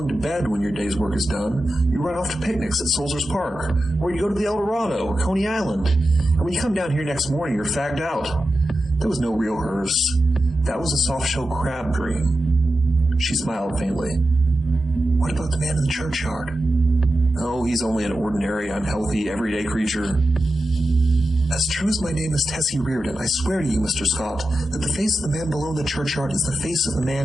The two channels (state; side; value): normal; both; correlation 0.91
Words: to bed when your day's work is done, you run off to picnics at Soldiers Park, or you go to the El Dorado or Coney Island. And when you come down here next morning, you're fagged out. There was no real hearse. That was a soft-shell crab dream. She smiled faintly. What about the man in the churchyard? Oh, he's only an ordinary, unhealthy, everyday creature. As true as my name is Tessie Reardon, I swear to you, Mr. Scott, that the face of the man below the churchyard is the face of the